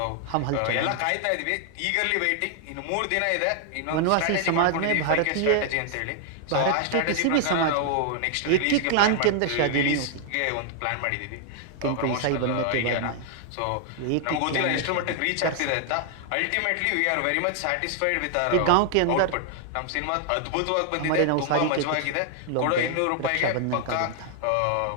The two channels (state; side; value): different; both; correlation 0.00